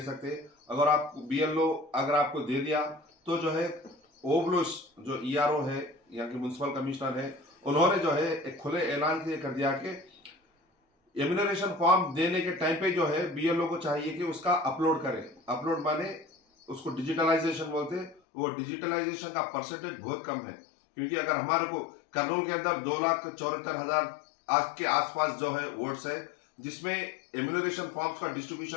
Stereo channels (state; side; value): drops out; right; at 18.2 s